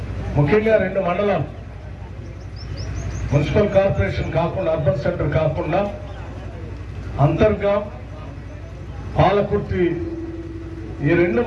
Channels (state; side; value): identical; both; correlation 1.00